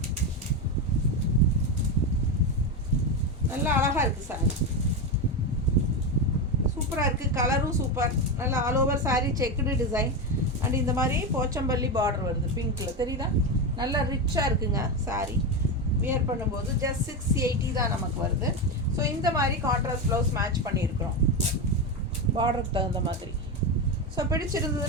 நல்லா அழகாக இருக்குது சாரி. சூப்பராக இருக்குது. கலரும் சூப்பர். நல்லா all over sari checked design. And இந்த மாதிரி போச்சம்பள்ளி பார்டர் வருது பிங்க்கில், தெரியுதா? நல்லா ரிச்சாக இருக்குங்க சாரீ. வியர் பண்ணும்போது ஜஸ்ட் 680 தான் நமக்கு வருது. ஸோ இந்த மாதிரி கான்ட்ராஸ்ட் ப்ளவுஸ் மேட்ச் பண்ணியிருக்கிறோம் பார்டருக்கு தகுந்த மாதிரி. ஸோ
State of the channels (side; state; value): both; normal; correlation 0.14